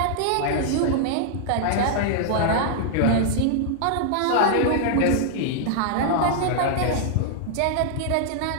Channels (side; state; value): both; different; correlation -0.01